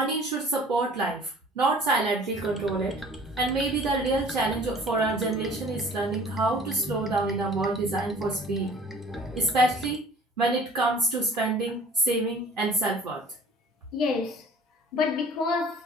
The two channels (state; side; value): normal; both; correlation 0.49